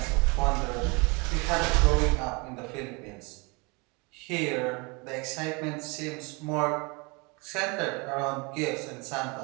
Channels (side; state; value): left; quieter; 29.1 dB